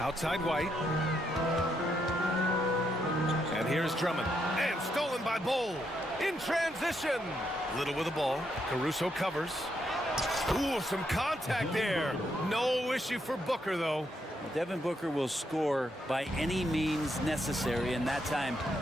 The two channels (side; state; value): both; normal; correlation 0.78